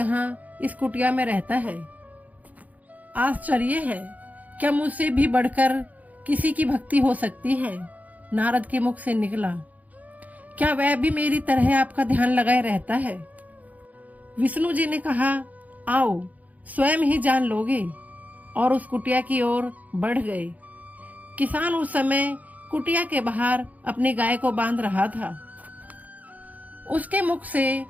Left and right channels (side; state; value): left; late; 0.077 ms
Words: इस कुटिया में रहता है। आश्चर्य है, क्या मुझसे भी बढ़कर किसी की भक्ति हो सकती है। नारद के मुख से निकला, क्या वह भी मेरी तरह आपका ध्यान लगाए रहता है। विष्णु जी ने कहा, आओ स्वयं ही जान लोगे, और उस कुटिया की ओर बढ़ गए। किसान उस समय कुटिया के बाहर अपनी गाय को बांध रहा था। उसके मुख से